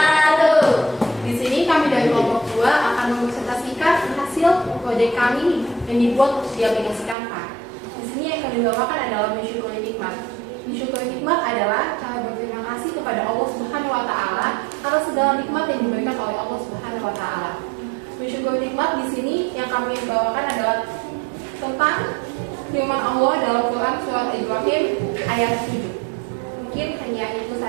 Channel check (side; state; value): left; drops out; at 7.2 s